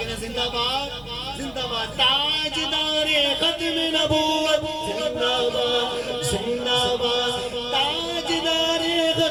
ہے؟ زندہ باد زندہ باد. تاجدار ختم نبوت زندہ باد زندہ باد. تاجدار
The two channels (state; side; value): noise; right; rumble, 25 dB below the sound